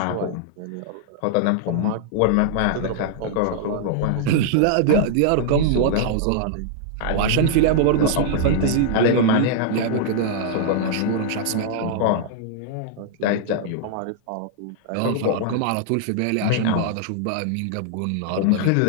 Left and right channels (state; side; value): different; both; correlation -0.01